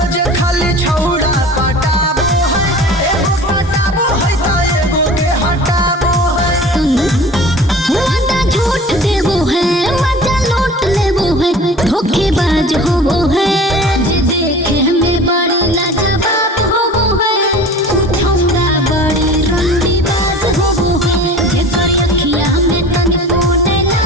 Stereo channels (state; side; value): normal; both; correlation 0.41